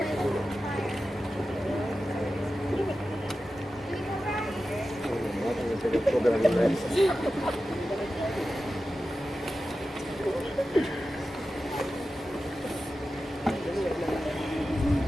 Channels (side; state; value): both; normal; correlation 0.93